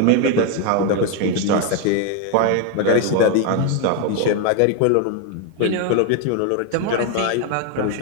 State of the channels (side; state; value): both; different; correlation 0.01